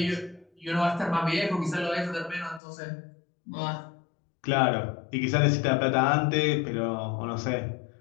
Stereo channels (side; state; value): right; drops out; at 2.6 s